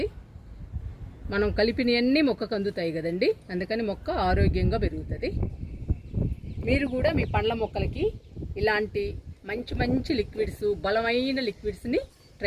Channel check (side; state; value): both; identical; correlation 1.00